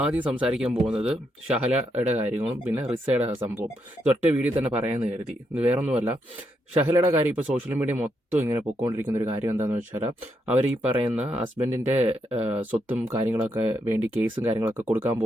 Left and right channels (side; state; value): both; normal; correlation 0.80